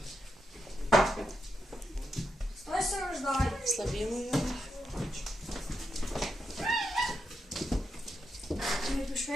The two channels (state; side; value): normal; both; correlation 0.84